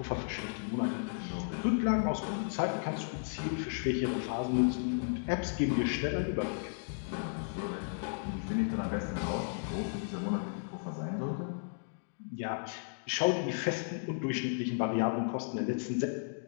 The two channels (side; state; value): right; silent; digital silence